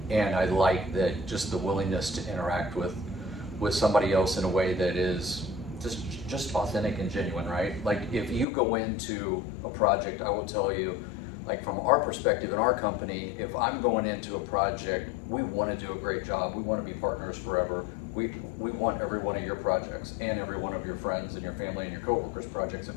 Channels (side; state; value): right; drops out; at 8.5 s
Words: and I like that, just the willingness to interact with somebody else in a way that is just authentic and genuine, right? Like, if you go into a project, I will tell you, like, from our perspective in our company, if I'm going into a project, we want to do a great job. We want to be partners forever. We want every one of your projects and every one of your friends and your family and your coworkers' projects,